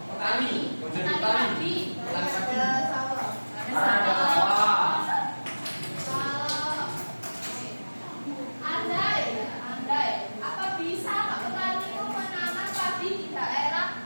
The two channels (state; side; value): inverted; both; correlation -1.00